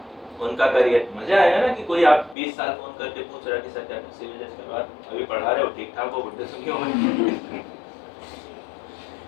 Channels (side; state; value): right; drops out; at 2.4 s